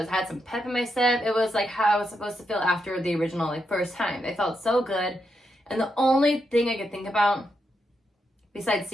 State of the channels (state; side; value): normal; both; correlation 0.83